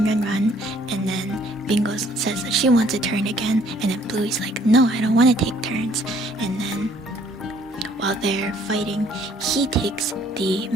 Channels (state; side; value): normal; both; correlation 0.61